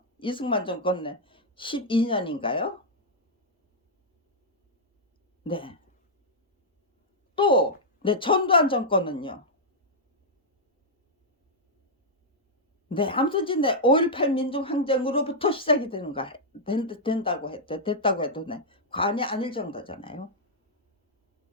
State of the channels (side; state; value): both; normal; correlation -0.07